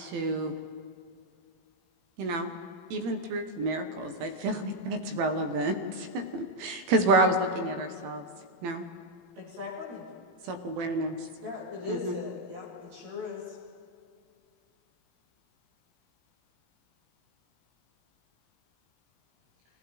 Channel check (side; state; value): left; late; 18 ms